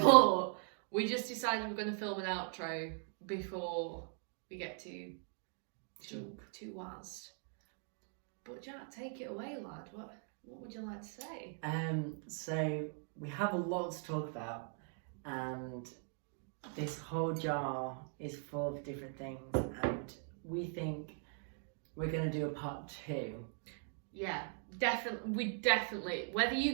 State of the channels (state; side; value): silent; left; 51 dB below the other